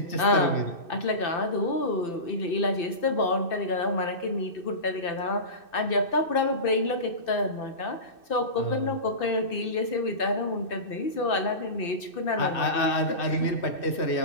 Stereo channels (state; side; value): late; right; 2.6 ms